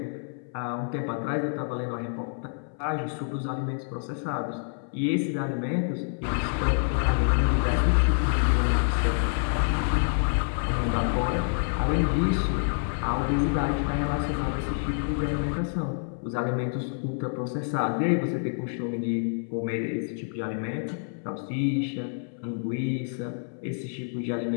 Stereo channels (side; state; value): right; silent; 60 dB below the other